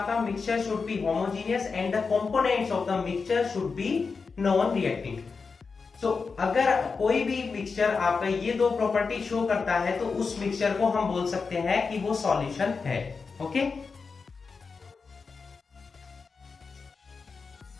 Mixture should be homogeneous and the components of the mixture should be non reacting. तो अगर कोई भी मिक्सचर आपका ये दो प्रॉपर्टी शो करता है तो उस मिक्सचर को हम बोल सकते हैं कि वो सॉल्यूशन है। ओके,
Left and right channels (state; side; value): quieter; right; 4.9 dB